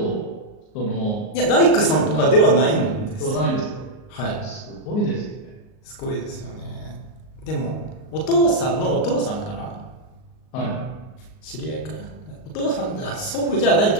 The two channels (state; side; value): late; right; 38 ms